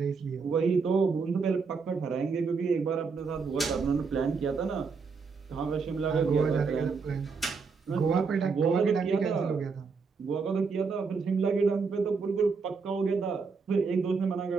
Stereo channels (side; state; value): left; quieter; 5.0 dB